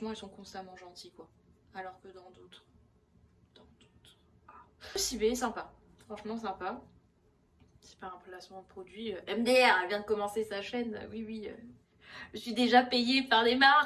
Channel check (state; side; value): identical; both; correlation 1.00